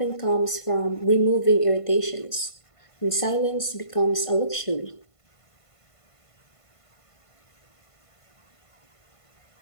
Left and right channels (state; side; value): late; right; 1.5 ms